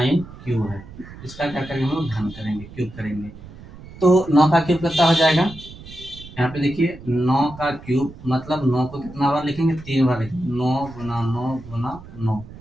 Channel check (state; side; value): noise; right; rumble, 17 dB below the sound